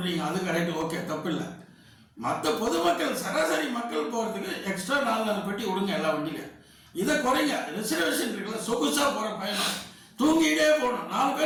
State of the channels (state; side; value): identical; both; correlation 1.00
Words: அது கரெக்டு, ஓகே, தப்பு இல்லை. மற்ற பொதுமக்கள் சராசரி மக்கள் போகிறதுக்கு எக்ஸ்ட்ரா 4 பெட்டி விடுங்க எல்லா வண்டியிலும். இதை குறைங்க. ரிசர்வேஷன் இருக்குல்ல, சொகுசாக போகிற பயணம் தூங்கிட்டே போகணும். 4